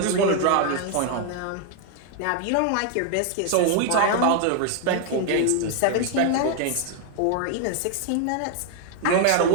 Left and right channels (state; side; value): different; both; correlation 0.00